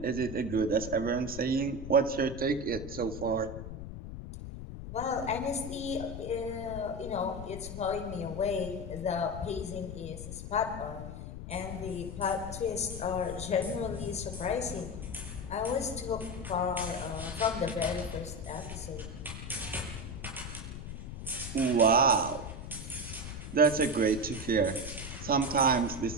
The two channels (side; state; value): left; noise; rumble, 8 dB below the sound